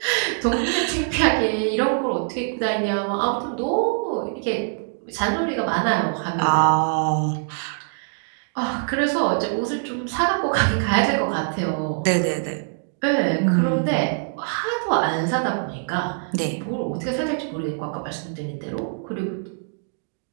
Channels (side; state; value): left; silent; digital silence